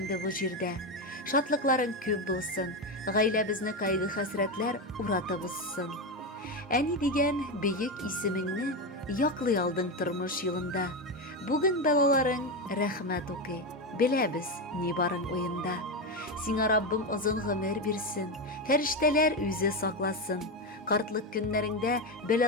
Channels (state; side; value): normal; both; correlation 0.13